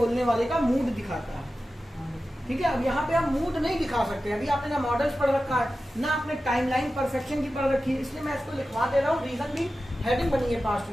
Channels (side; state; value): both; normal; correlation 0.94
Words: वाले का मूड दिखाता है, ठीक है। अब यहाँ पे आप मूड नहीं दिखा सकते, अभी आपने ना मॉडल्स पढ़ रखा है ना आपने टाइमलाइन परफेक्शन की पढ़ रखी है, इसलिए मैं इसको लिखवा दे रहा हूँ। रीजन भी हेडिंग बनी है पास्ट